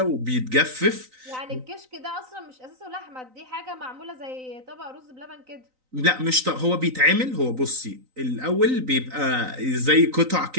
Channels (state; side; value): late; left; 3.9 ms